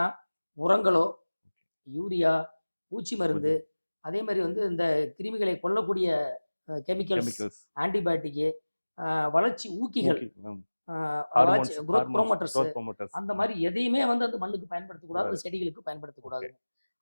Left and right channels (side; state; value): both; inverted; correlation -1.00